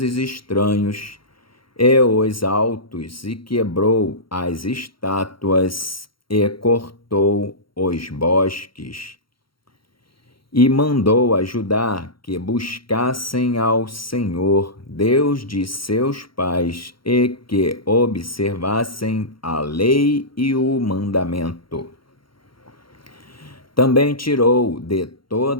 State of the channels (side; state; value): right; late; 0.73 ms